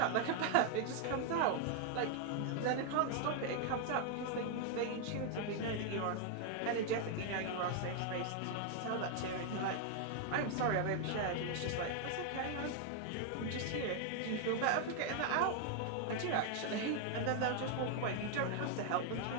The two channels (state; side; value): different; both; correlation 0.00